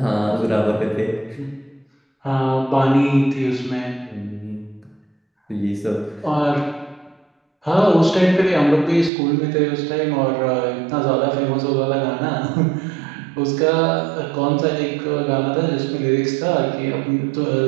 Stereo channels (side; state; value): left; drops out; at 9.1 s